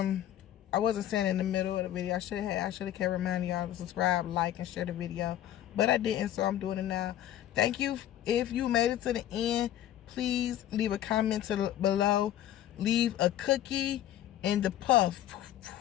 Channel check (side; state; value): right; quieter; 12.2 dB